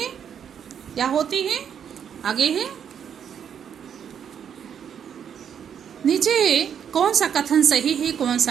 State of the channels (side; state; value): left; quieter; 8.3 dB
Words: या होती है। आगे है नीचे कौन सा कथन सही है, कौन